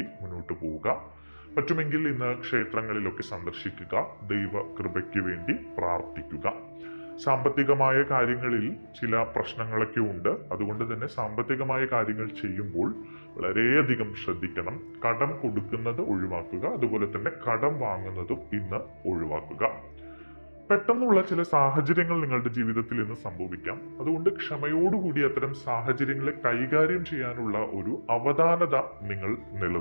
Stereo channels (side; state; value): both; inverted; correlation -1.00